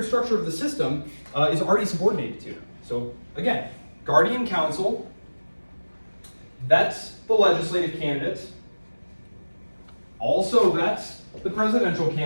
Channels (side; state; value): both; inverted; correlation -1.00